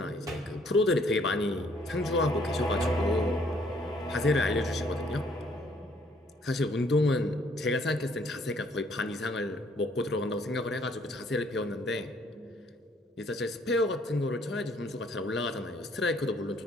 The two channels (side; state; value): both; normal; correlation 0.64